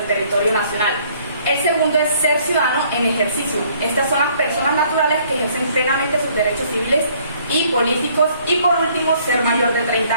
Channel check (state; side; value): inverted; both; correlation -0.61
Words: territorio nacional. El segundo es ser ciudadano en ejercicio. Estas son las personas naturales que ejercen plenamente sus derechos civiles y políticos. Y por último, ser mayor de 30